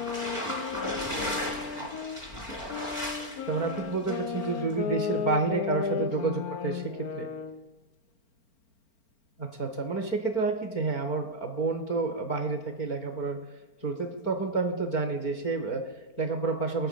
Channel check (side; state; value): right; late; 4.4 ms